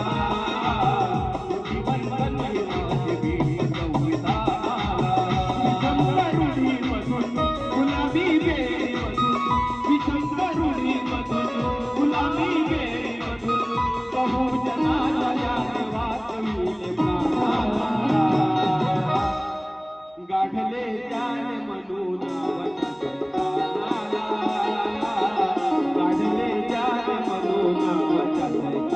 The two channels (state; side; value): identical; both; correlation 1.00